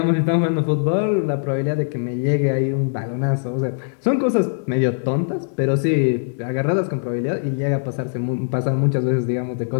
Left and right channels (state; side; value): silent; right; digital silence